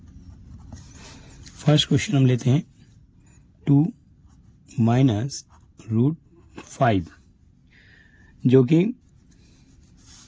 First question हम लेते हैं 2 minus root 5 जो कि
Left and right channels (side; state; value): both; identical; correlation 1.00